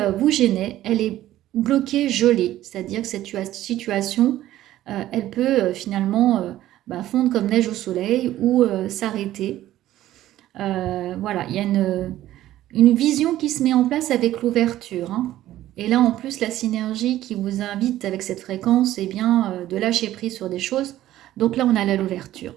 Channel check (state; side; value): quieter; left; 14.0 dB